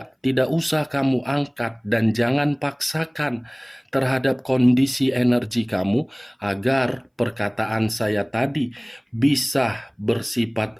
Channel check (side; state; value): both; identical; correlation 1.00